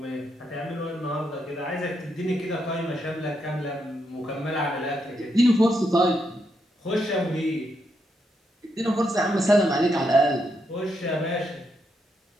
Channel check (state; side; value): normal; both; correlation 0.80